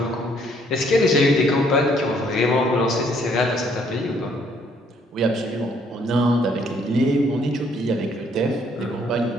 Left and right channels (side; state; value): both; normal; correlation 0.66